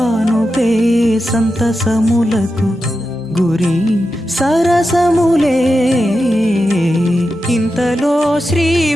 సంతసములకు గురి సరసములే. ఇంతలో శ్రీ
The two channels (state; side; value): normal; both; correlation 0.90